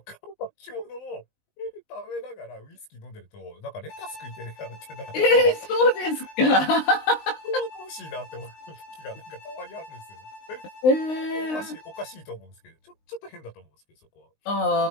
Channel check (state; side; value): late; right; 19 ms